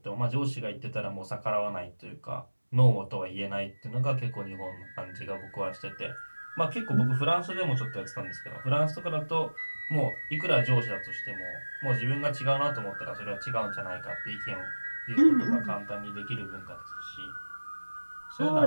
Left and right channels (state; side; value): inverted; both; correlation -1.00